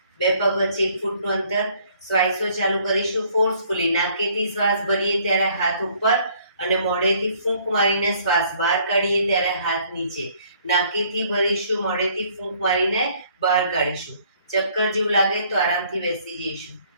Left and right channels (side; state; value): both; inverted; correlation -0.61